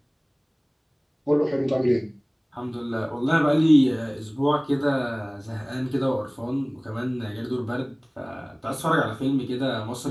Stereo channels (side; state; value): both; identical; correlation 1.00